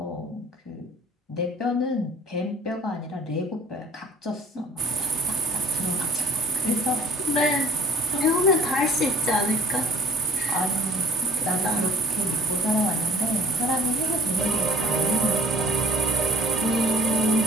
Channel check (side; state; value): both; normal; correlation 0.53